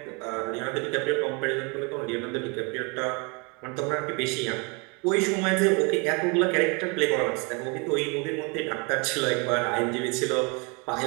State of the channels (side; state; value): left; quieter; 31.5 dB